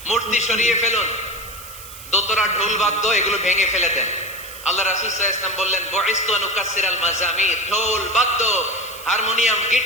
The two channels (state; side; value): noise; right; hiss, 15 dB below the sound